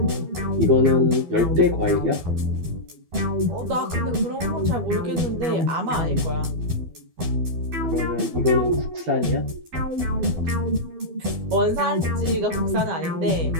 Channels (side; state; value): left; late; 12 ms